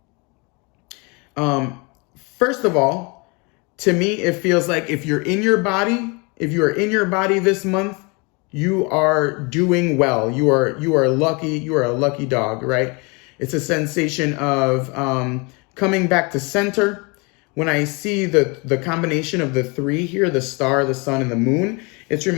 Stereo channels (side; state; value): right; quieter; 29.6 dB